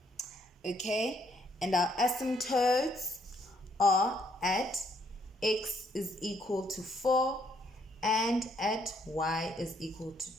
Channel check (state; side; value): normal; both; correlation 0.70